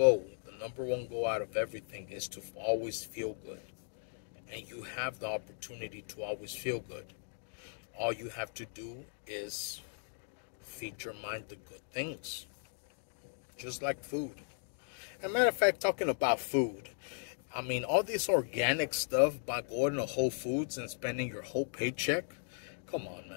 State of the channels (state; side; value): silent; right; digital silence